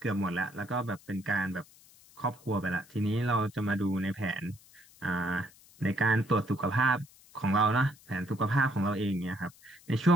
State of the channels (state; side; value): noise; left; hiss, 25 dB below the sound